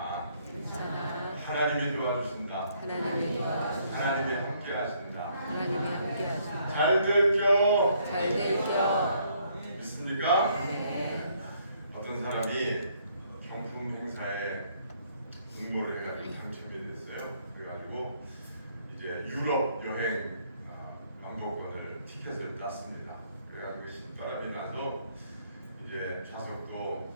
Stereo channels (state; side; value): inverted; both; correlation -0.67